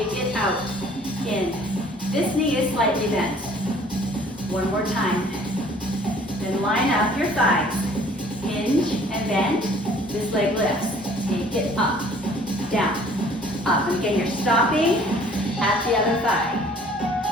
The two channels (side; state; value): both; normal; correlation 0.54